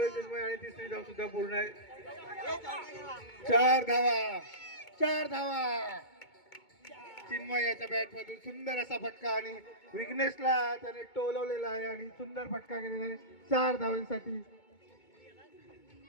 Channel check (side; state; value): right; late; 2.2 ms